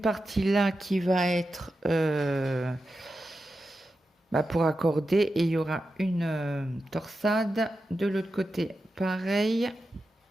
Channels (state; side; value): normal; both; correlation 0.90